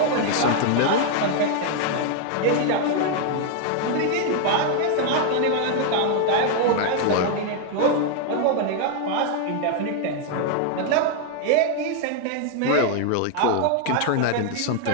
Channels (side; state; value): both; different; correlation 0.00